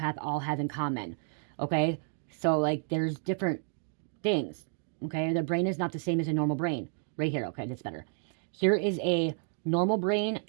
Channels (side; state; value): left; silent; 57 dB below the other